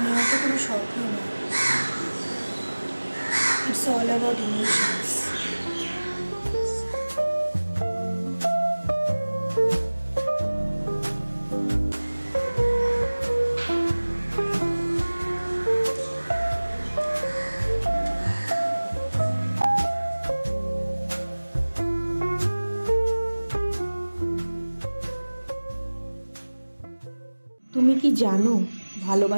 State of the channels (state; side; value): inverted; both; correlation -1.00